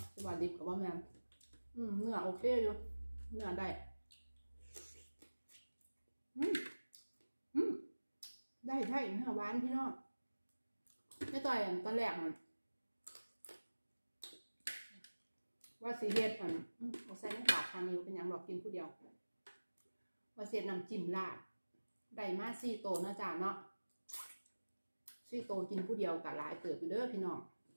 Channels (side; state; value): both; inverted; correlation -1.00